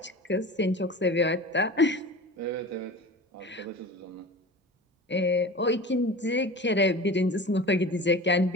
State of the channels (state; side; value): normal; both; correlation 0.35